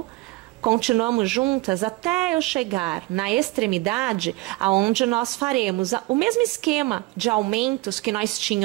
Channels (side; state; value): left; quieter; 21.0 dB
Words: continuamos juntas até eu chegar na extremidade, aonde nós faremos o mesmo esquema de aumentos que nós